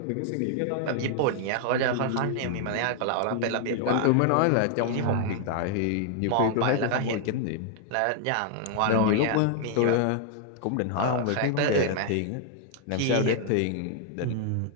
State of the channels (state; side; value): different; both; correlation 0.00